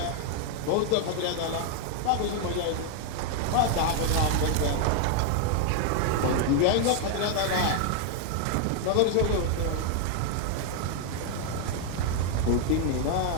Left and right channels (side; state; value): both; different; correlation 0.00